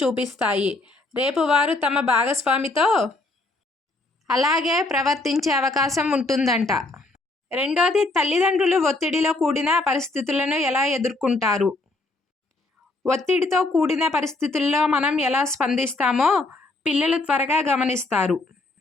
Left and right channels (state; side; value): quieter; right; 3.0 dB